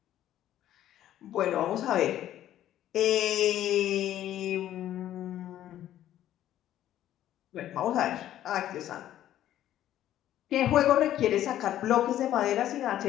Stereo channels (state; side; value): quieter; right; 12.3 dB